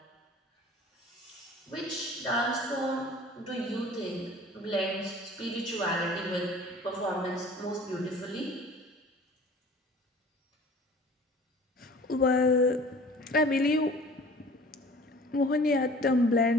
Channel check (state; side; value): normal; both; correlation 0.47